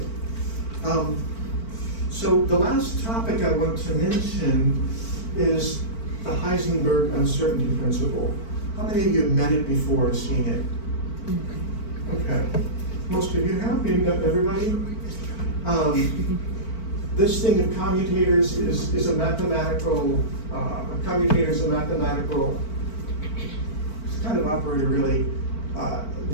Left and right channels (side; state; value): right; late; 4.5 ms